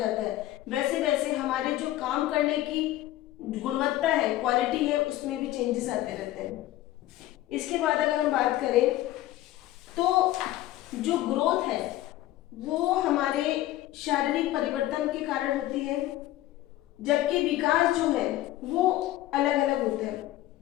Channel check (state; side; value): quieter; right; 15.2 dB